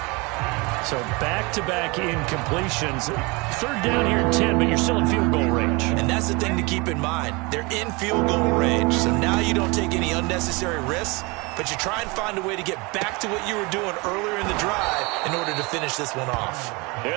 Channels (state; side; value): quieter; left; 26.8 dB